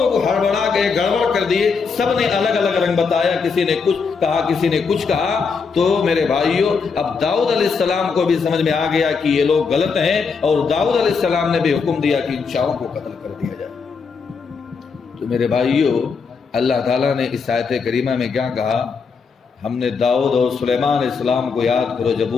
ہڑبڑا گئے، گڑبڑ کر دیے، سب نے الگ الگ رنگ بتایا، کسی نے کچھ کہا کسی نے کچھ کہا۔ تو میرے بھائیوں اب داؤد علیہ السلام کو بھی سمجھ میں آ گیا کہ یہ لوگ غلط ہیں اور داؤد علیہ السلام نے بھی حکم دیا کہ ان چاروں کو قتل کر دیا جائے۔ تو میرے بھائیوں اللہ تعالیٰ نے اس آیت کریمہ میں کیا کہا؟ ہم نے داؤد اور سلیمان علیہ السلام کو یاد کرو جب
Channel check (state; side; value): quieter; right; 5.3 dB